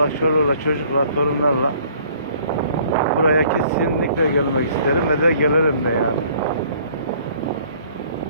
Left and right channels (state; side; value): inverted; both; correlation -0.57